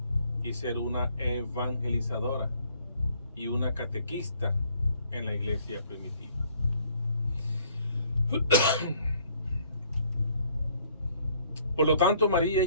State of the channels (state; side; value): inverted; both; correlation -0.63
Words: y ser una evangelizadora y una catequista en la iglesia primitiva. Por lo tanto, María